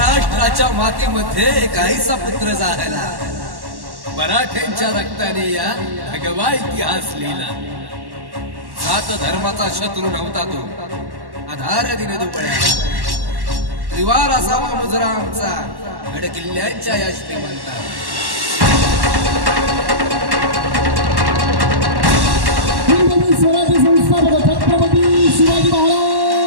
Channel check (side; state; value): left; late; 1.1 ms